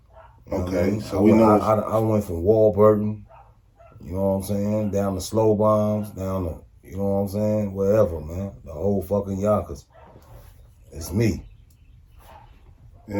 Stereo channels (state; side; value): identical; both; correlation 1.00